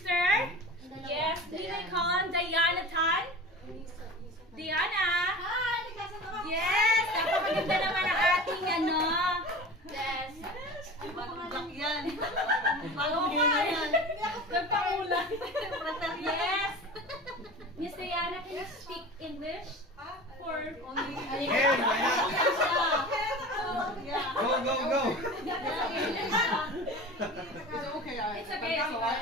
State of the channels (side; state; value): both; normal; correlation 0.35